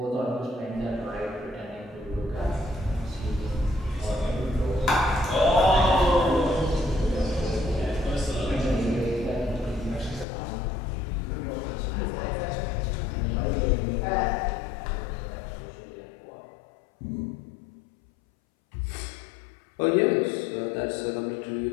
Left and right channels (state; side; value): drops out; right; at 10.2 s